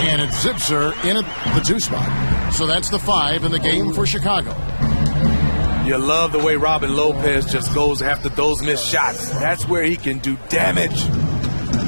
And it's Zipser in at the 2 spot. So that's the 5 in the game for Chicago. You love the way Robin Lopez just goes after those missed shots. That's where he can do damage.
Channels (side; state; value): both; inverted; correlation -1.00